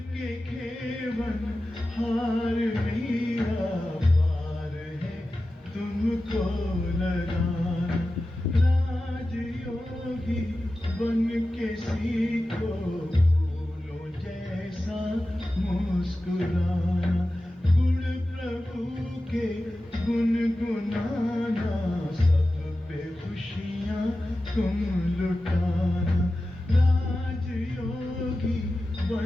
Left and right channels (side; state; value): both; normal; correlation 0.94